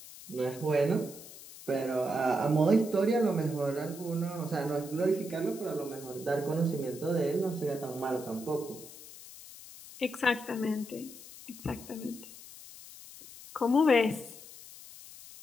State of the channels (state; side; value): noise; left; hiss, 16 dB below the sound